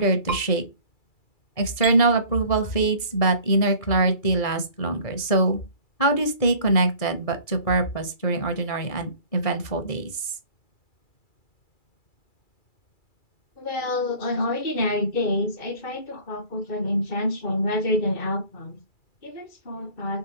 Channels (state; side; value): late; right; 2.3 ms